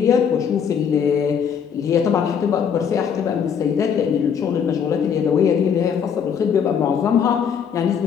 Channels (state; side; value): quieter; right; 7.4 dB